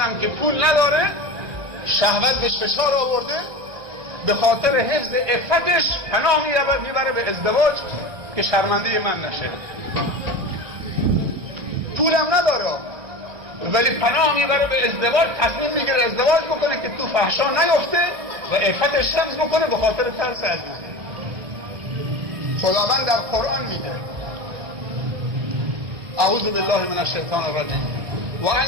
که پول نداره، شهوت بهش فشار آورده، به خاطر حفظ عفتش پناه میبره به ازدواج که شرمنده من نشه. پولم نداره ولی پناه میبره به ازدواج، تصمیم میگیره ازدواج بکنه که تو فحشا نیفته و عفتش حفظ بکنه به خاطر ترس از من. خداوند در قرآن میگه اعوذ بالله من الشیطان الرجیم و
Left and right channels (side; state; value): left; late; 1.6 ms